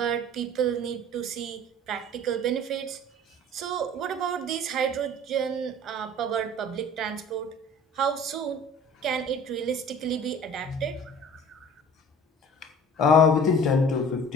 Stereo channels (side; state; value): both; normal; correlation 0.45